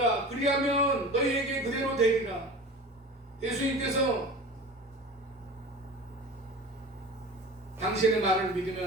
그리하면 너희에게 그대로 되리라. 예수님께서 당신의 말을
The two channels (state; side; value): normal; both; correlation 0.36